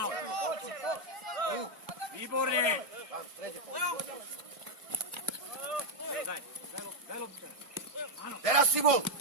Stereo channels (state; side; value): late; left; 1.5 ms